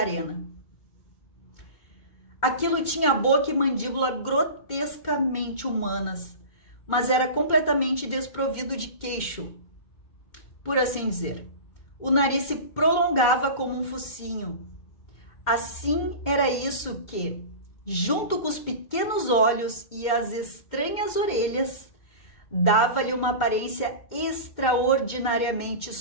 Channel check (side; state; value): right; late; 2.2 ms